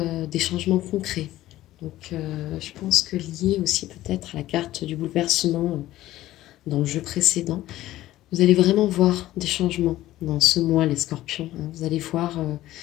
des changements concrets. Donc, je pense que lié aussi peut-être à la carte du bouleversement dans le jeu précédent, vous allez vraiment voir des changements dans ce mois, les scorpions. Hein. Vous allez voir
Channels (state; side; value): quieter; right; 15.2 dB